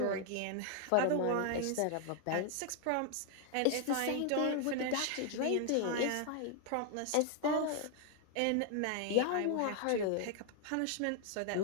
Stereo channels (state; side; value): different; both; correlation 0.00